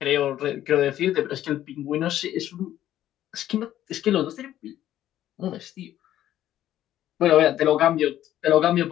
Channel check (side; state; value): right; quieter; 12.4 dB